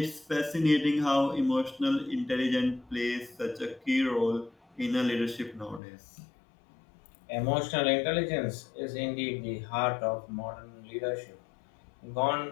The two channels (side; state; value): right; drops out; at 5.8 s